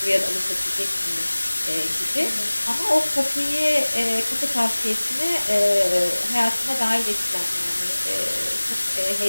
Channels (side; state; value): both; inverted; correlation -1.00